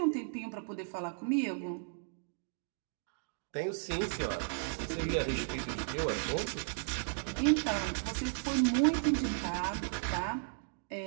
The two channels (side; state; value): left; silent; digital silence